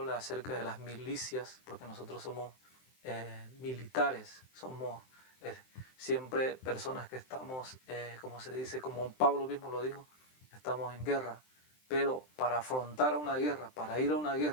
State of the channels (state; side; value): late; right; 23 ms